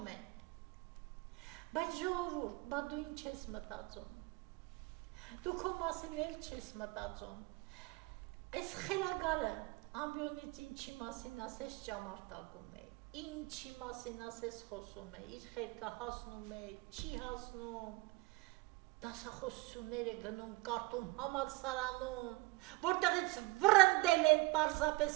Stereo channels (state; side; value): quieter; left; 22.3 dB